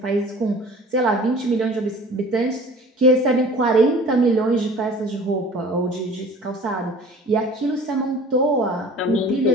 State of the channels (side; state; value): both; normal; correlation 0.45